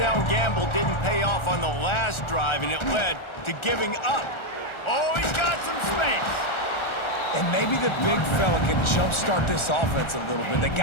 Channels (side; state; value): right; late; 1.4 ms